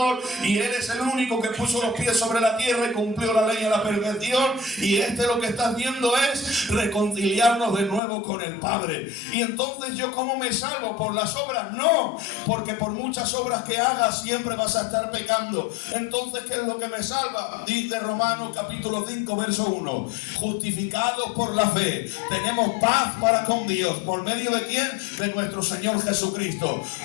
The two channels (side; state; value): right; drops out; at 8.0 s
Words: y Él es el único que puso los pies sobre la tierra y cumplió la ley a la perfección. Y lo que está haciendo es reconciliarnos de nuevo con el Padre. Y entonces, ¿yo cómo me salvo? ¿Por las obras? No, porque por muchas obras que hagas siempre vas a estar pecando. Entonces, ¿qué es lo que me salva? Dice Romanos capítulo 5 verso 1: justificados por la fe, tenemos paz para con Dios. ¿Por medio de quién? De nuestro Señor Jesucristo.